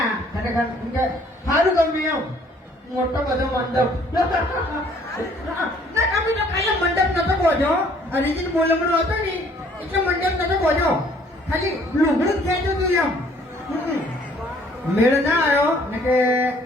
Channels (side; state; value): both; normal; correlation 0.60